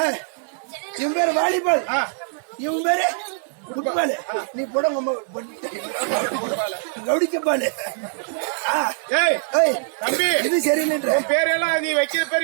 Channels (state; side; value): silent; left; digital silence